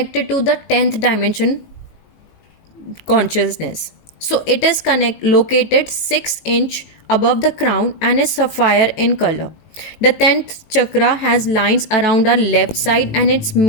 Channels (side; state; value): right; late; 19 ms